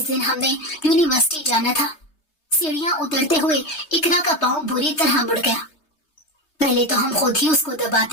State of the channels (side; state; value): right; late; 3.2 ms